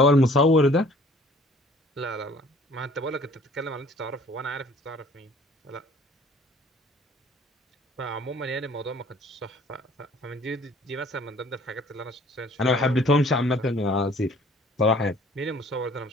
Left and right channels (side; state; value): both; normal; correlation 0.54